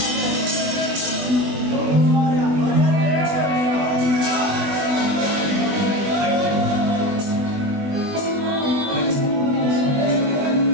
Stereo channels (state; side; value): late; left; 20 ms